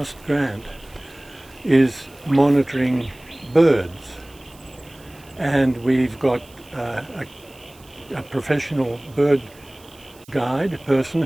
grant is monitoring birds. And we've got a professional bird guide person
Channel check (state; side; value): noise; right; hiss, 26 dB below the sound